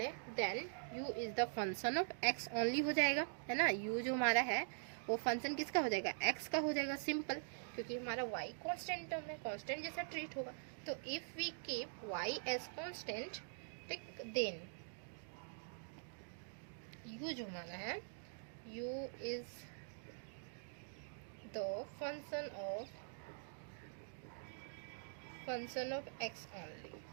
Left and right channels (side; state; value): left; silent; digital silence